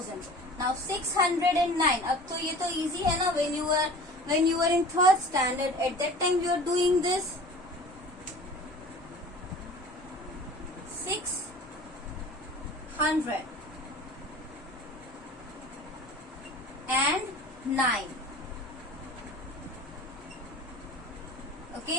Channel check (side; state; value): both; normal; correlation 0.41